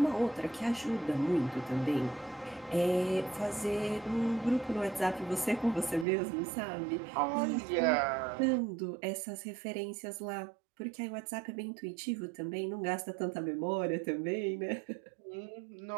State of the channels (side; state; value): left; drops out; at 6.1 s